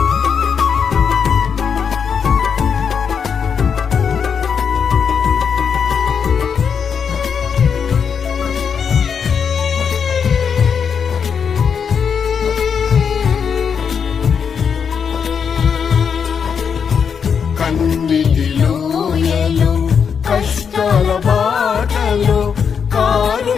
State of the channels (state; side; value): quieter; right; 6.8 dB